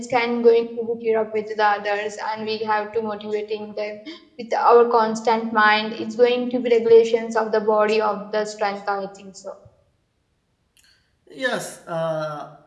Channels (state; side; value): identical; both; correlation 1.00